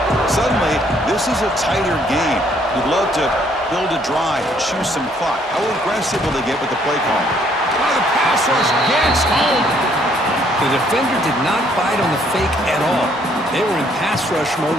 Suddenly, this is a tighter game. You'd love to build a drive, choose some clock. How aggressive will they get with the play call? Oh, the pass rush gets home. The defender did not bite on the fake at all. They were in pass rush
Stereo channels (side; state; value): both; normal; correlation 0.66